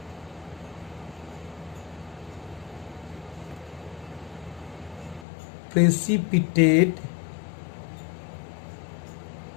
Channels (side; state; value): right; drops out; at 5.2 s